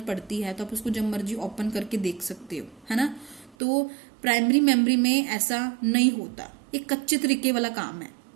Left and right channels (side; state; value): left; drops out; at 3.6 s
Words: पड़ती है तो आप उसको जब मर्जी ओपन करके देख सकते हो, है ना। तो प्राइमरी मेमोरी में ऐसा नहीं होता, एक कच्चे तरीके वाला काम है,